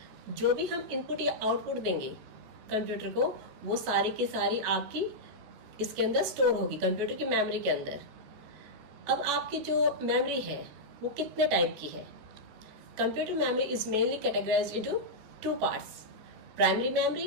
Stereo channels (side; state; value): left; late; 14 ms